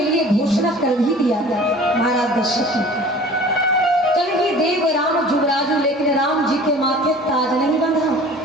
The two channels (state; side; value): normal; both; correlation 0.45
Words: लिए घोषणा कर भी दिया था महाराज दशरथ ने। देव राम जुगराजू, लेकिन राम जी के माथे ताज नहीं बंधा।